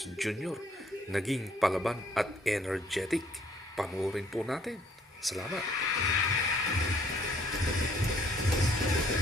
Jr. naging palaban at energetic. Panoorin po natin. Salamat.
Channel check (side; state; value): both; normal; correlation 0.62